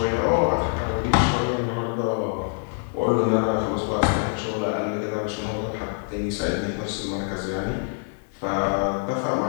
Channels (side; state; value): right; silent; 56 dB below the other